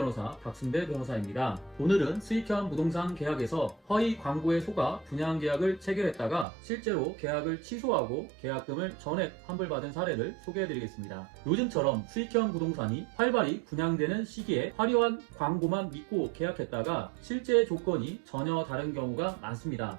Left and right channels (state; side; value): drops out; left; at 6.5 s